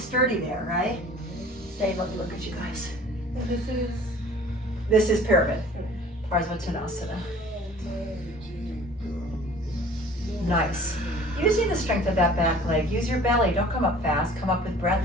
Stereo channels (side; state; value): both; normal; correlation 0.48